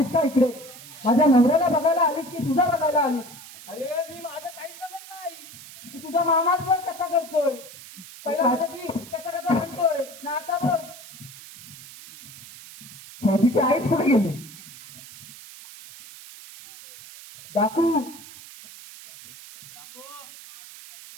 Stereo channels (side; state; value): right; noise; hiss, 17 dB below the sound